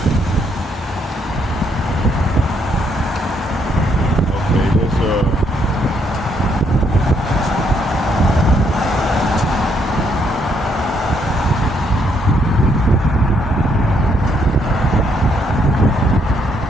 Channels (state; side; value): normal; both; correlation 0.72